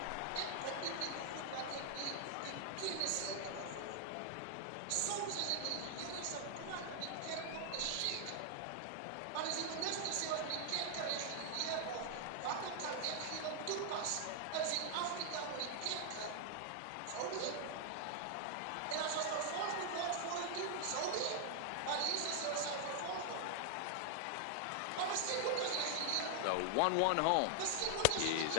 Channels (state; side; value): different; both; correlation 0.00